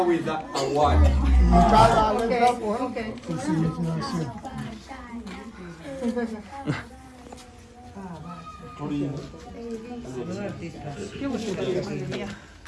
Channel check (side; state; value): both; identical; correlation 1.00